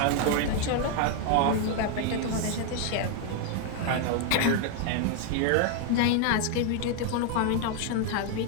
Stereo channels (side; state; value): both; different; correlation 0.00